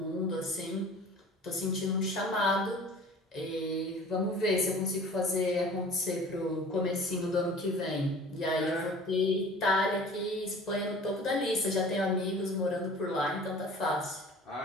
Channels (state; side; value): normal; both; correlation 0.45